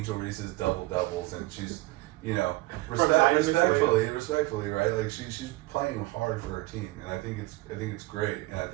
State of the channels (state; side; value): quieter; left; 20.1 dB